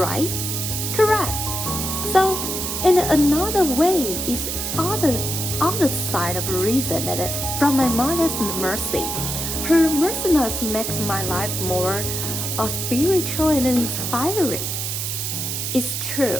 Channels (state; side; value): noise; right; hiss, 3 dB below the sound